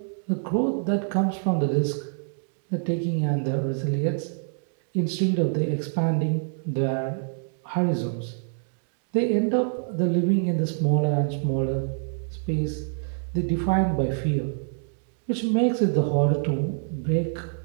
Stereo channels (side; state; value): left; silent; digital silence